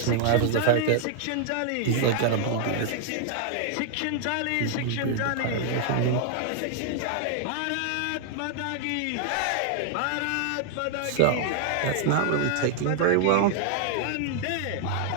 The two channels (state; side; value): different; both; correlation -0.01